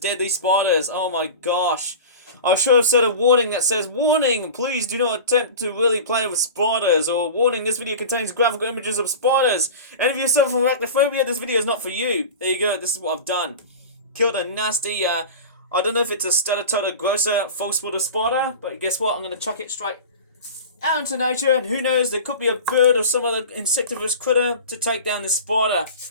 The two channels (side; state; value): both; inverted; correlation -0.33